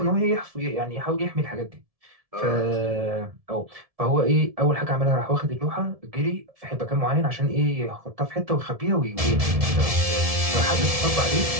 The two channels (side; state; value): left; late; 1.7 ms